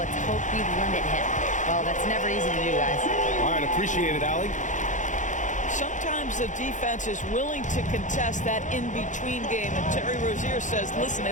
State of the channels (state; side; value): late; right; 0.36 ms